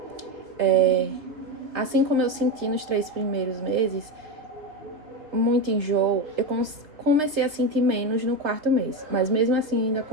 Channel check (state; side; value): late; left; 3.0 ms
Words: assim como eu senti nos 3 primeiros meses, muito enjoo, eu comecei a sentir menos no 4º mês, mas mesmo assim ainda